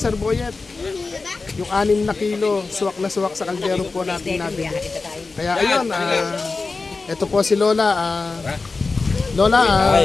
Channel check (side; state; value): right; quieter; 4.0 dB